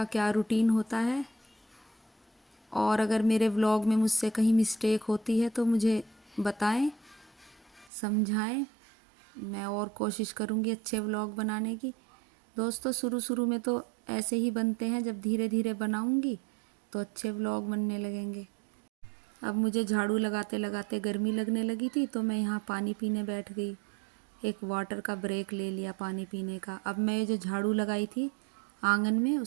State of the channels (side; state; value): left; drops out; at 7.9 s